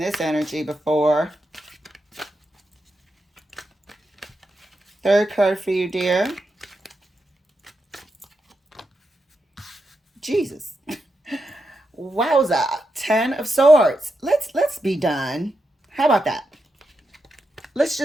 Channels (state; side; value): normal; both; correlation 0.86